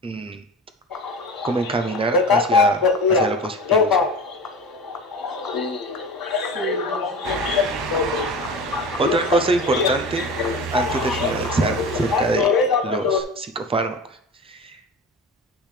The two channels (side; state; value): both; normal; correlation 0.32